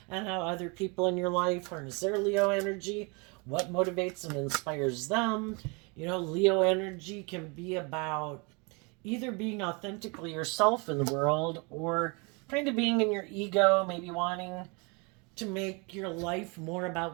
and how other people in your life harness their Leo energy, what motivates and inspires them. Leo energy can be about either being authentically yourself in the world or kind of being in your ego, maybe wanting to make your life more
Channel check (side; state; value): left; quieter; 30.9 dB